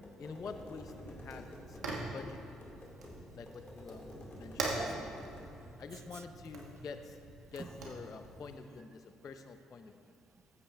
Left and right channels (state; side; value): normal; both; correlation 0.67